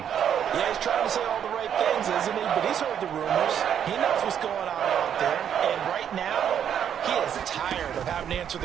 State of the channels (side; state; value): left; quieter; 9.0 dB